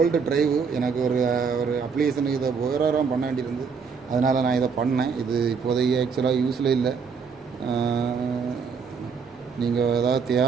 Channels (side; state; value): left; quieter; 5.8 dB